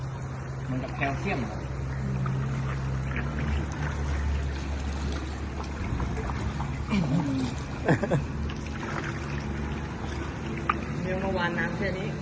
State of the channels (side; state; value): both; identical; correlation 1.00